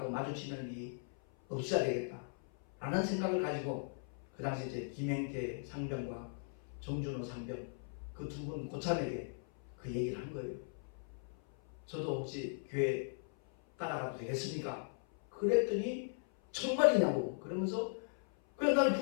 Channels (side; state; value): right; silent; 52 dB below the other